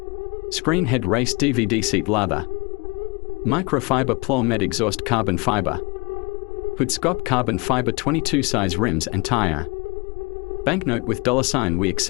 Screen head race DVD seat leather. Microfiber plow med exhaust carbon fiber. Hood scope carbon fiber 22 size rims and tire. Banknote with $sign. We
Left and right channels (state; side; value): quieter; right; 27.6 dB